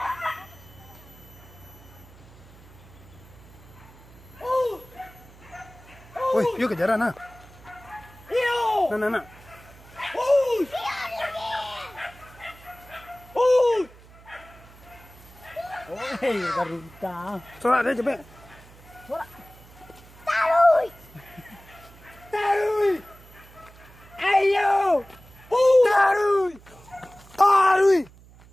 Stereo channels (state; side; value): noise; right; hum, 22 dB below the sound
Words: Woi, yuk kejaran nah. Nah. Oi, garuda. Sorak dia cepet. Taruy. Ayo. Taruy.